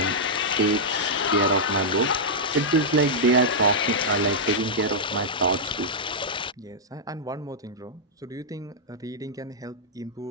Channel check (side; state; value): both; normal; correlation -0.08